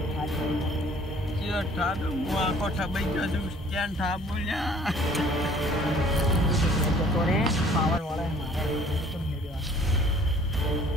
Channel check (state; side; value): normal; both; correlation 0.54